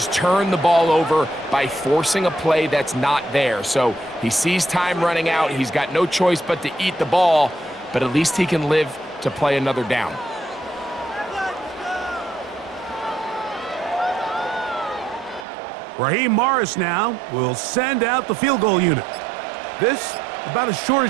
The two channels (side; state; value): left; drops out; at 15.5 s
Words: turn the ball over by forcing a play that's not there. So he sees time running out. He's got no choice but to eat the ball, but at least he can live to play another down. Raheem Morris now will send out the field goal unit. This, about as short